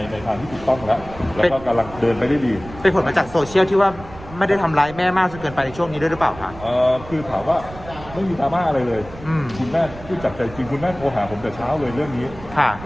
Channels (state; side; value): noise; right; rumble, 16 dB below the sound